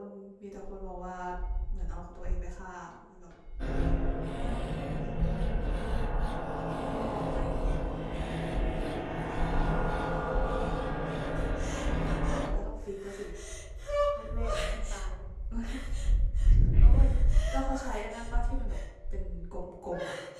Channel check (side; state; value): both; identical; correlation 1.00